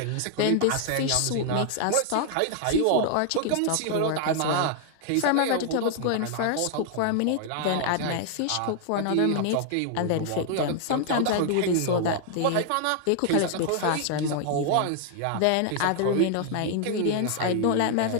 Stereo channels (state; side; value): different; both; correlation 0.00